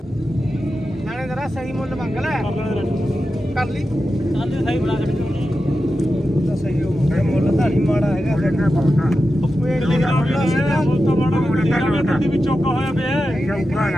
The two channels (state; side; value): normal; both; correlation 0.91